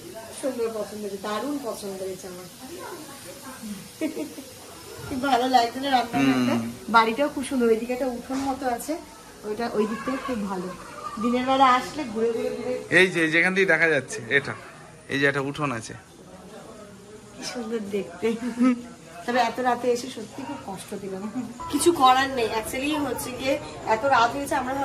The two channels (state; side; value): identical; both; correlation 1.00